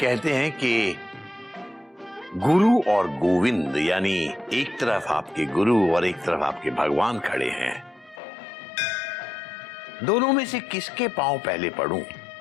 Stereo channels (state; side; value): drops out; right; at 8.2 s